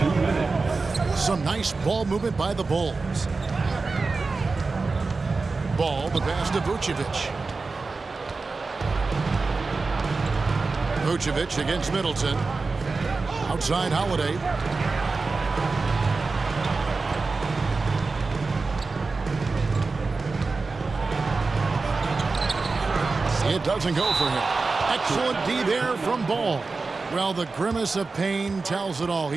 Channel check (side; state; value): left; quieter; 4.0 dB